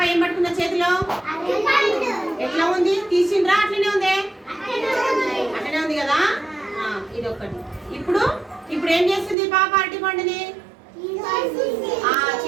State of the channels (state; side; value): drops out; left; at 9.3 s